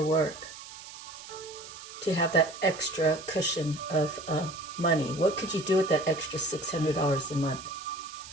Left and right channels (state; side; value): noise; right; hiss, 15 dB below the sound